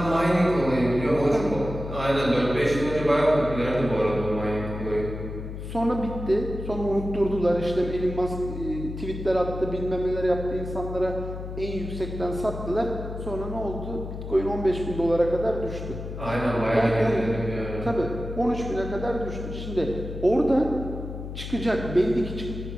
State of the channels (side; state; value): left; noise; hum, 8 dB below the sound